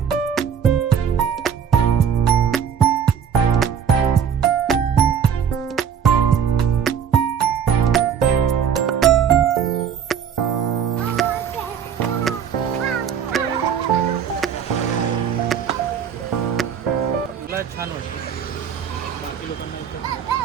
छान वाटतं. बाकी लोकांना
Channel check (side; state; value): left; quieter; 7.9 dB